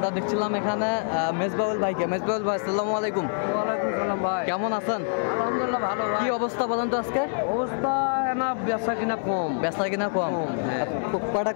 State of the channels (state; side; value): silent; right; 61 dB below the other